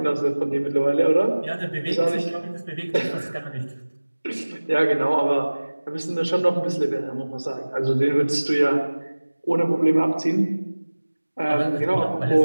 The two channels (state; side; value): inverted; both; correlation -1.00